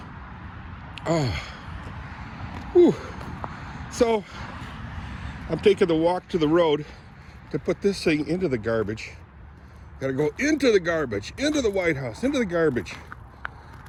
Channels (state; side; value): identical; both; correlation 1.00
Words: Oh. Whew. So, I'm taking the walk to the road to put this thing into the garbage. Gotta go into the garbage, into the White House, into the garbage,